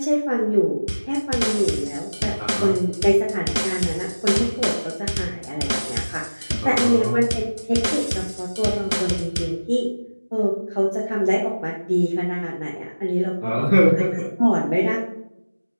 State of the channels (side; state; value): both; inverted; correlation -1.00